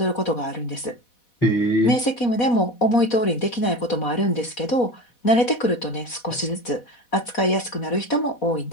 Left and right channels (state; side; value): late; right; 4.1 ms